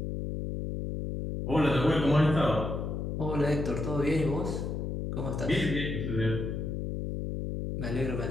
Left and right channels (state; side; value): noise; left; hum, 3 dB below the sound